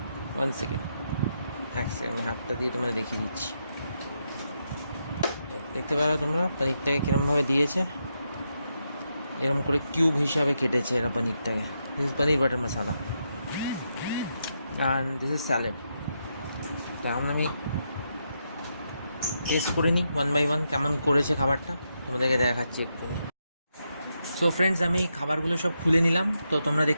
1 সেকেন্ড, এক সেকেন্ড, আমি হাতটা দিয়ে তোমাদের দেখিয়ে দিচ্ছি। দেখতে পারো তোমরা পনিরটাকে কীরমভাবে দিয়েছে, এরকম করে কিউব হিসাবে কেটেছে এরা পনিরটাকে। This is paneer butter masala and this is salad. তখন আমি টেস্ট করে নিই ওয়ান বাই ওয়ান কেমন করেছে খাবারটা, তোমাদেরকে দেখাচ্ছি একটু। সো ফ্রেন্ডস, আমি খাবারগুলো সব খুলে নিলাম। তো তোমরা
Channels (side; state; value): both; inverted; correlation -0.83